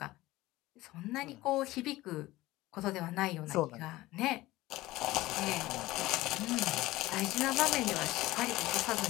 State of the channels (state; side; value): quieter; right; 18.1 dB